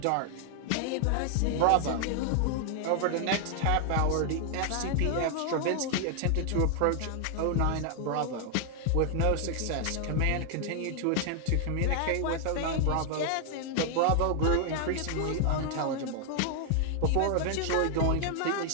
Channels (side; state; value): both; different; correlation 0.00